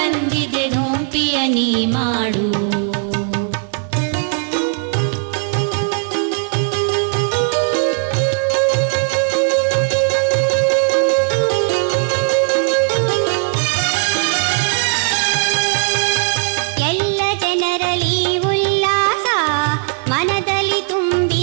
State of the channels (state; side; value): silent; left; 67 dB below the other